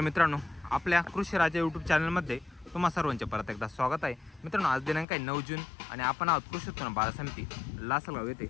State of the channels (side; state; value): right; drops out; at 5.1 s